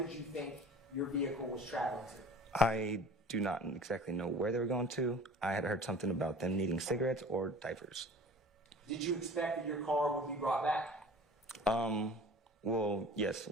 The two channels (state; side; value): normal; both; correlation 0.43